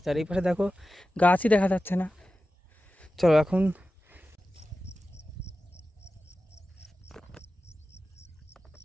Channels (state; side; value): normal; both; correlation 0.94